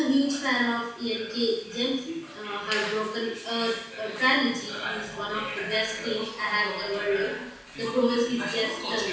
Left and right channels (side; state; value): both; identical; correlation 1.00